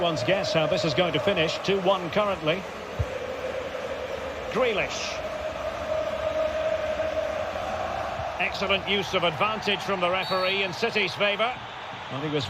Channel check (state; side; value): identical; both; correlation 1.00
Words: guess how this is going to finish. 2-1 currently. Grealish. Excellent use of advantage from the referee in City's favour. Well, he was